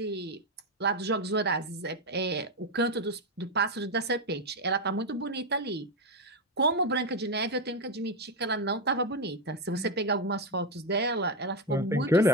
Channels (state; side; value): normal; both; correlation 0.08